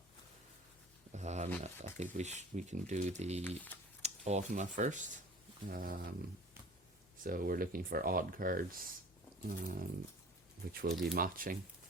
I think we can do the Automa first. So we're looking for odd cards, which will be matching.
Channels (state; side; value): normal; both; correlation 0.44